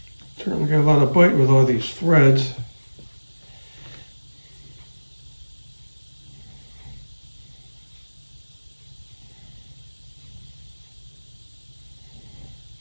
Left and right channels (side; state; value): both; inverted; correlation -1.00